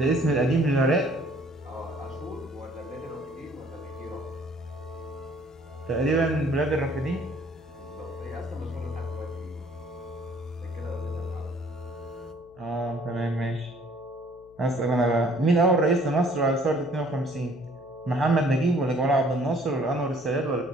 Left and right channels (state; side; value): noise; left; hum, 27 dB below the sound